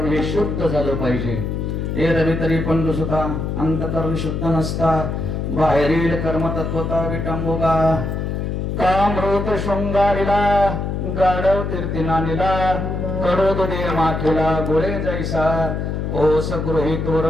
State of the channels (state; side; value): noise; left; hum, 2 dB below the sound